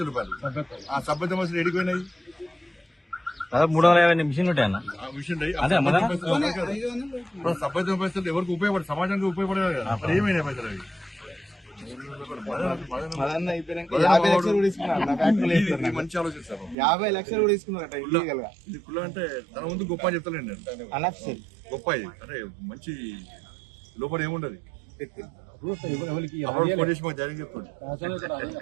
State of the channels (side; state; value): left; drops out; at 16.8 s